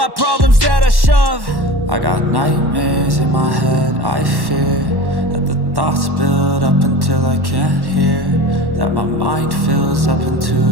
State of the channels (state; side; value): late; left; 1.1 ms